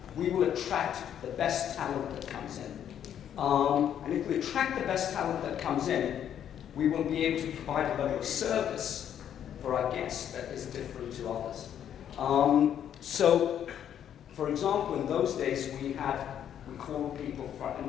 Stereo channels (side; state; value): right; quieter; 9.7 dB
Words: we will attract the best talent that comes in. And if we attract the best talent that comes in, we will be able to provide a level of service for our guests that is different to others. So, for example, in those days we called people, and